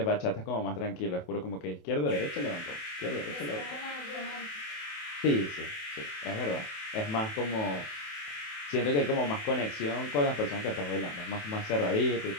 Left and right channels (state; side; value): late; right; 28 ms